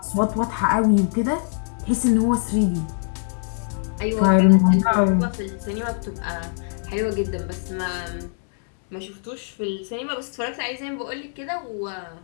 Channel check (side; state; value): right; silent; 63 dB below the other